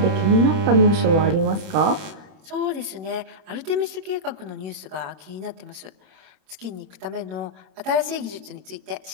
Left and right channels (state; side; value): late; left; 26 ms